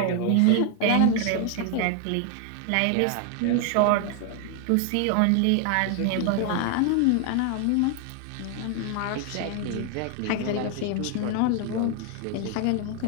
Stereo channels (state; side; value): different; both; correlation 0.00